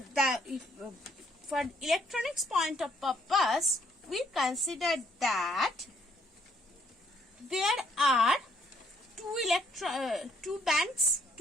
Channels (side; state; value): both; normal; correlation 0.68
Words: electronics point of purpose, we consider that there are two bands,